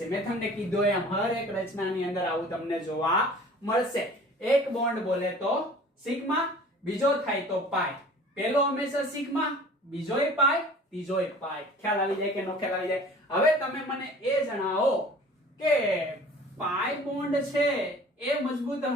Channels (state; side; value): normal; both; correlation 0.46